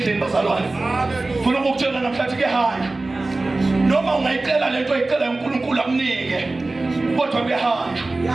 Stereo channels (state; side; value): quieter; left; 3.2 dB